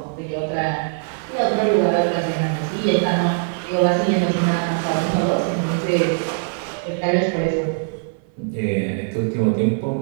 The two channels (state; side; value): silent; left; 56 dB below the other